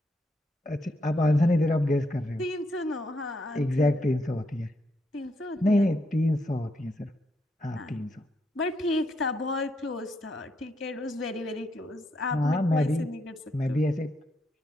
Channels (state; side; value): normal; both; correlation 0.79